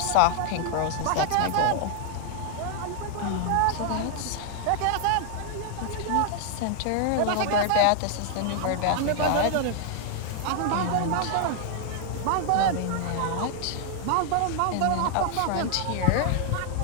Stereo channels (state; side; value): different; both; correlation 0.00